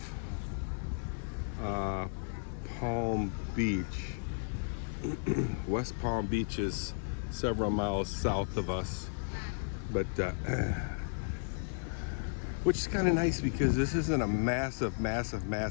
Palm Beach. West Palm Beach is several miles south of us, but which is kind of nice because this isn't a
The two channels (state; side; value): silent; right; digital silence